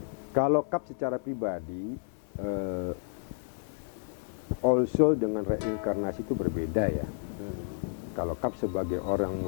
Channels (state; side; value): silent; right; 57 dB below the other